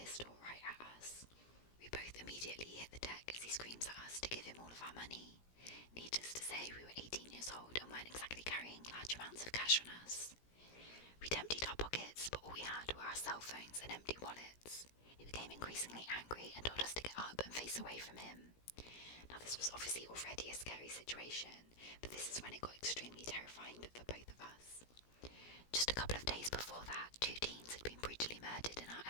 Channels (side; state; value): right; late; 17 ms